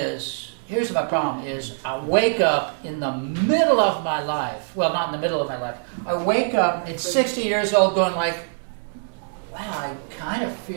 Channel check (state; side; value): silent; left; digital silence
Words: here's my problem is, I wake up in the middle of my life. Well, not in the middle of my life. I wake up at 60 years old going wow, I kind of